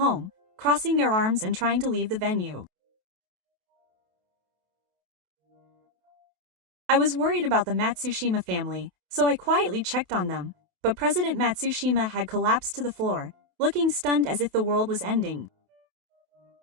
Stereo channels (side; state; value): left; late; 28 ms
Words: crossing their arms and trying to leave the venue. I was worried about the Matsushima family, so I quietly checked on them, but President Matsushima had collapsed to the floor, looking stunned as if the world was ending.